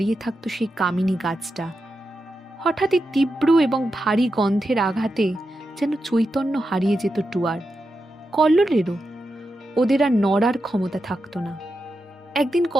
থাকত সেই কামিনী গাছটা। হঠাৎই তীব্র এবং ভারী গন্ধের আঘাতে যেন চৈতন্য হারিয়ে যেত টুয়ার, কল্লোলেরও। ওদের আর নড়ার ক্ষমতা থাকতো না। একদিন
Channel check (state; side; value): normal; both; correlation 0.88